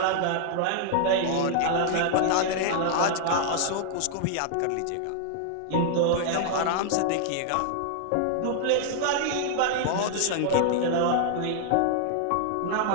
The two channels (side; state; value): both; different; correlation -0.01